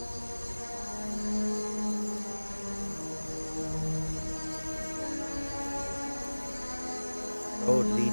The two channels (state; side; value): inverted; both; correlation -1.00